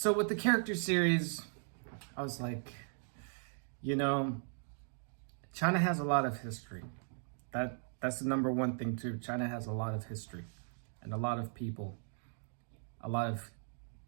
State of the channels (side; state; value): left; silent; digital silence